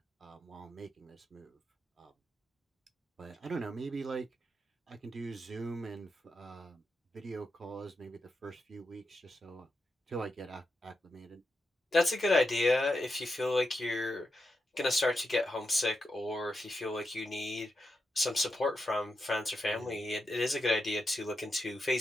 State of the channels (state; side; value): normal; both; correlation 0.86